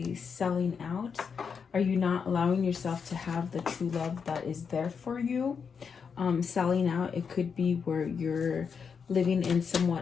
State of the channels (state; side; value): quieter; right; 6.2 dB